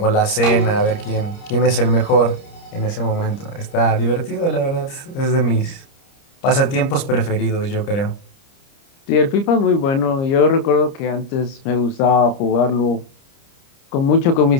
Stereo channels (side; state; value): right; late; 30 ms